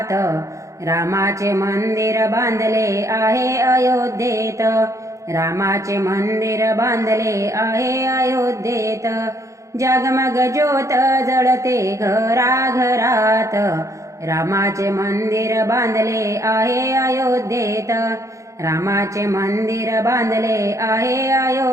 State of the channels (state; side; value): late; left; 0.15 ms